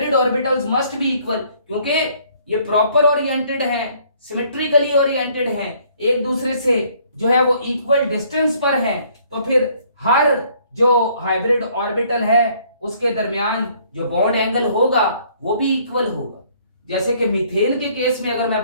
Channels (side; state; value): both; inverted; correlation -0.62